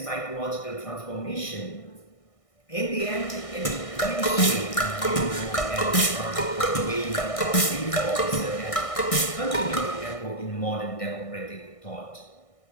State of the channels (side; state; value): right; late; 1.6 ms